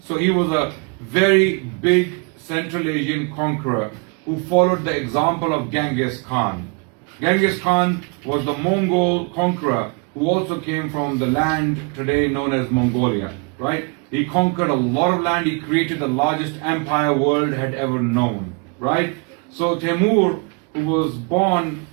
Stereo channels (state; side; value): quieter; left; 33.6 dB